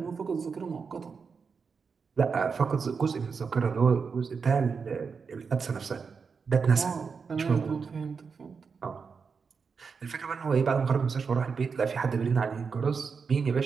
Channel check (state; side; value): quieter; left; 5.5 dB